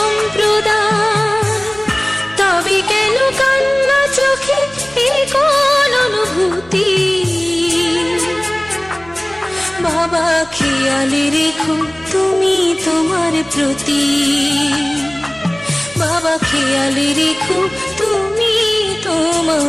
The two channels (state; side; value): noise; right; hum, 25 dB below the sound